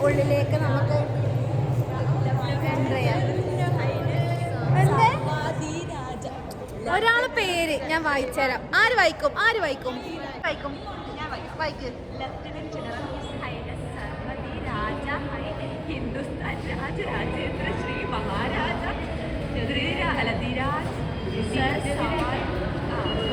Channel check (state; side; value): identical; both; correlation 1.00